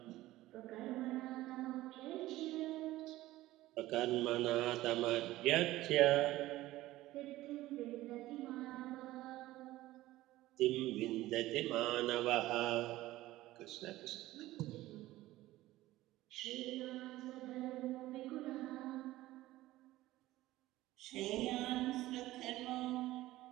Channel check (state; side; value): quieter; left; 16.5 dB